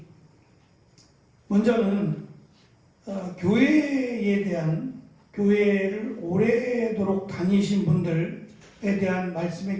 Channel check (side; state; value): both; identical; correlation 1.00